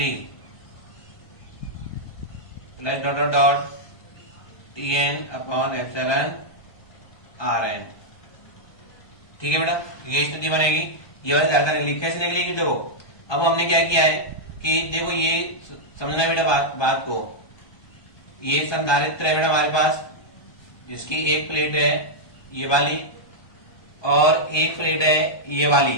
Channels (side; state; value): right; late; 1.2 ms